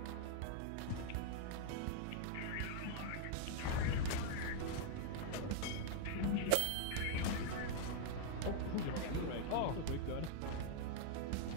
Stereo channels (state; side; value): different; both; correlation -0.01